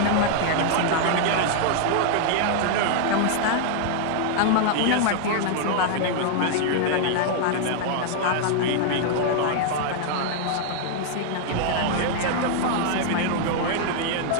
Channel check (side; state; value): both; different; correlation 0.00